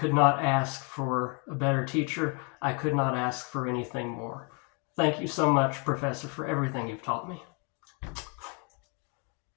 not ask for a better teacher. I could not ask for anything more. Thank you so much, Professor, for everything you've taught me.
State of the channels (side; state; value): right; quieter; 35.1 dB